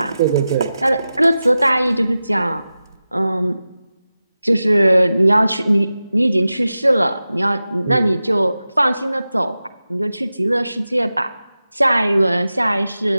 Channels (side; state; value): both; inverted; correlation -0.94